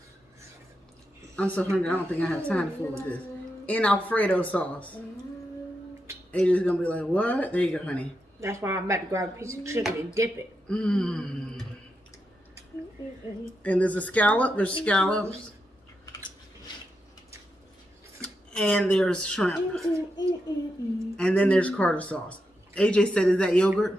I'm so hungry, I don't think I have time to fool with this. In Alfredo sauce. AJ's gonna be like, what? There you go, honey. That's why I'm about to grab a piece of chicken and dip it. Mmm. And there's a scallop, there's scallops. And there's shrimp. And then there's Carter sauce. AJ said, is that yogurt?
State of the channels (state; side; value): normal; both; correlation 0.85